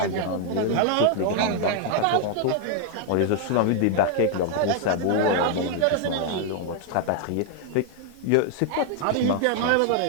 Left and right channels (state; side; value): different; both; correlation 0.00